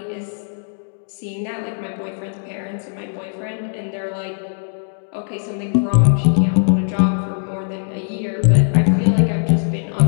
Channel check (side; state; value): right; silent; digital silence